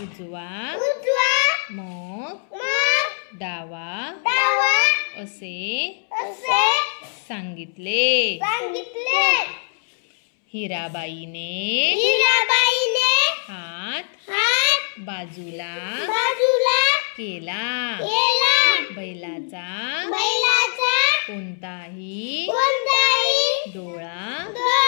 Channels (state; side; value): silent; right; 64 dB below the other